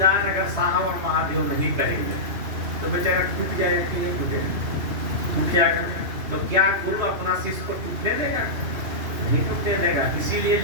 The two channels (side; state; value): left; late; 2.9 ms